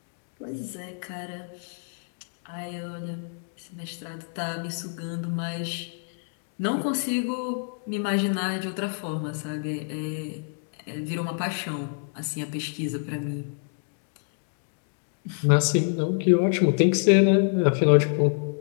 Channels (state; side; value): silent; right; 60 dB below the other